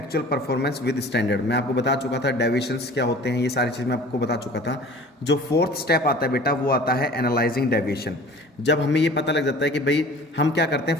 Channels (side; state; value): both; normal; correlation 0.45